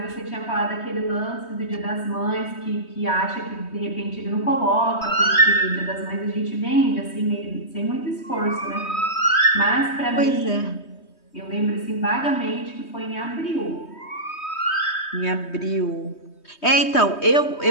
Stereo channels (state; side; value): late; right; 3.2 ms